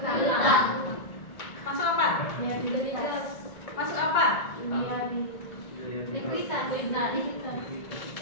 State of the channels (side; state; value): right; late; 1.7 ms